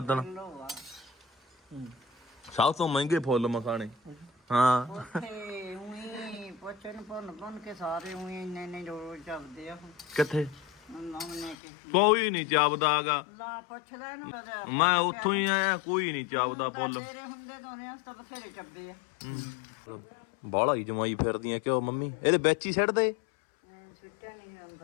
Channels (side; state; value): right; drops out; at 11.6 s